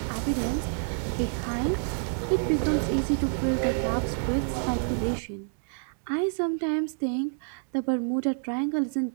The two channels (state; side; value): silent; left; digital silence